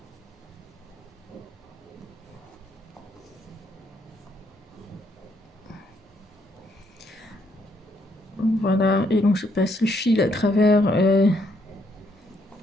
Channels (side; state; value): both; normal; correlation 0.72